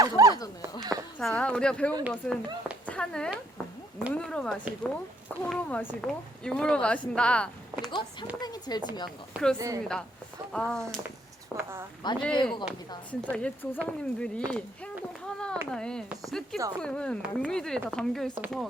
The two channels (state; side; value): normal; both; correlation 0.68